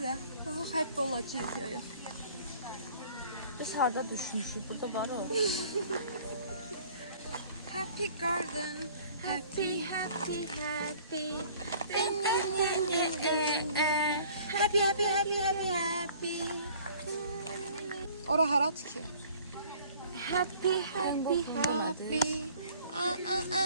Happy olacak ya. Biz harda düşmüşük. Burada var o. Happy Garden. Happy, happy, happy. Happy, happy, happy, happy, happy. Ora harat ki. Happy, happy, happy.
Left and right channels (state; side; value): inverted; both; correlation -0.52